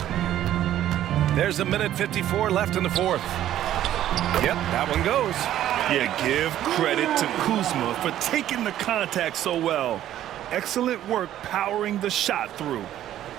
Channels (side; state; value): left; quieter; 12.3 dB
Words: There's 1:54 left in the fourth. Yep, that one goes. Yeah, give credit to Kuzma for taking the contact so well. Excellent work powering the shot through.